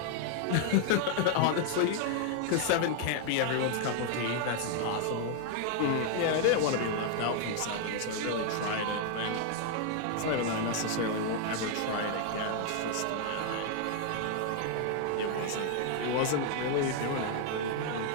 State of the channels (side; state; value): both; different; correlation 0.00